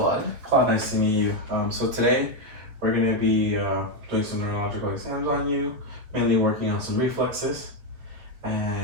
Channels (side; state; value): left; late; 7.9 ms